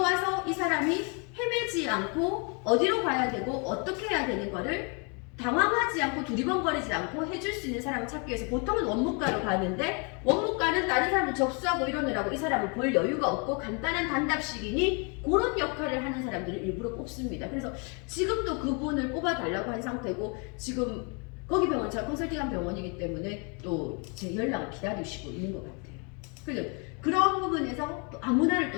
이 사람이 헤매지 않고 어디로 가야 되고 어떻게 해야 되는 거를 당황하지 않고 두리번거리지 않고 해줄 수 있는 사람을 찾기 위해서 보통은 원무과로 가는데, 원무과는 다른 사람을 접수하고 이러느라고 이 사람을 볼 여유가 없고 간단한 단답식이니 그런 역할을 하는 사람들을 일부러 뽑습니다. 그래서 지금도 그분을 뽑아달라고 한 상태고, 지금 거기 병원 제가 컨설팅한 병원이기 때문에 또 제 연락을 기다리시고 있는 것 같아요. 그래서 그런 부분에서 또 아무나를 또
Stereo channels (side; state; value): right; quieter; 34.6 dB